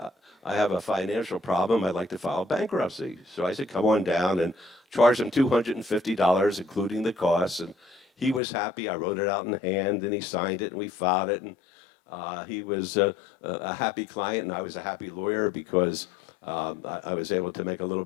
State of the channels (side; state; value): right; drops out; at 8.4 s